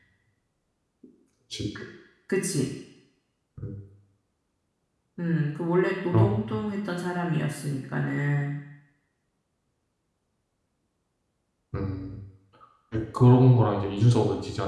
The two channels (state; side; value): identical; both; correlation 1.00